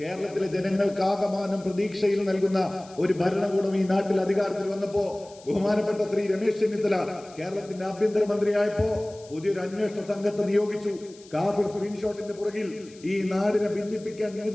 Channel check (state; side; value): noise; left; hiss, 23 dB below the sound